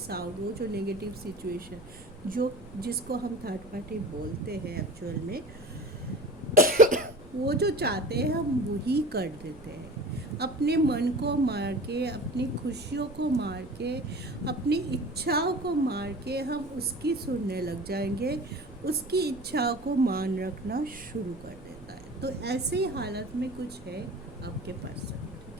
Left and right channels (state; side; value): noise; right; rumble, 19 dB below the sound